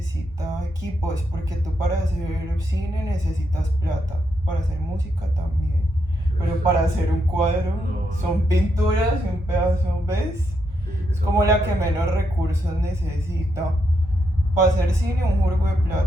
equipos, porque tú para hacer cine necesitas plata, para hacer música también. Pero para hacer un cuadro son pinturas y un pedazo, ¿ves? Es como la que menos recursos necesita. Para hacer cine un jurgo de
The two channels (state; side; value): normal; both; correlation 0.80